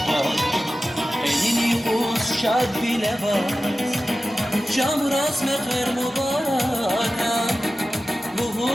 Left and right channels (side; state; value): both; normal; correlation 0.95